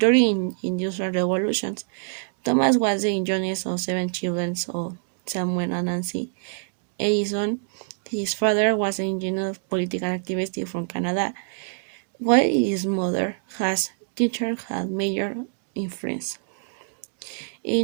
industrial revolutions, Thomas was the youngest of 7 children of Samuel and Nancy Edison. His father was an engineer political activist from Canada, while his mother has teacher had major influence.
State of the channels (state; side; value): silent; left; digital silence